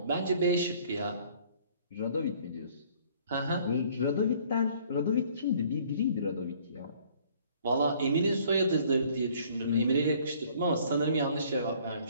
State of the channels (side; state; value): both; inverted; correlation -0.57